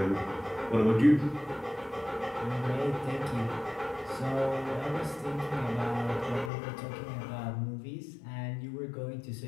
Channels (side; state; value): right; drops out; at 6.5 s